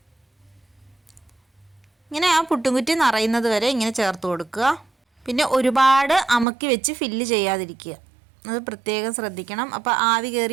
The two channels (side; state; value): left; drops out; at 6.5 s